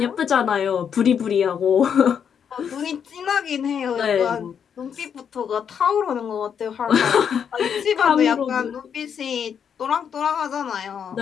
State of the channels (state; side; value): quieter; right; 7.7 dB